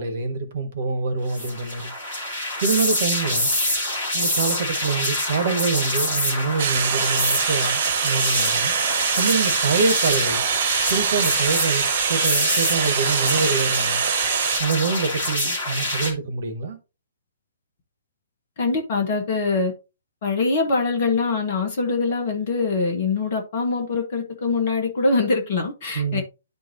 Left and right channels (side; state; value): both; inverted; correlation -0.55